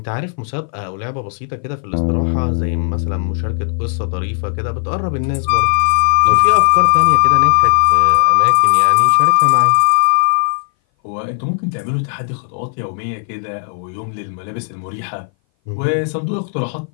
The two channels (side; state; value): right; silent; 60 dB below the other